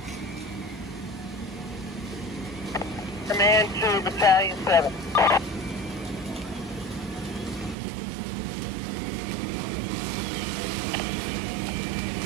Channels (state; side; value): drops out; left; at 7.8 s